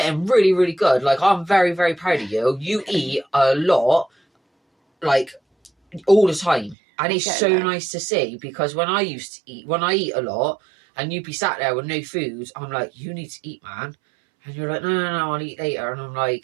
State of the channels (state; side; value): drops out; left; at 6.8 s